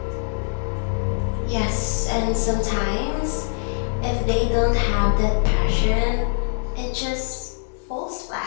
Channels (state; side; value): silent; right; 63 dB below the other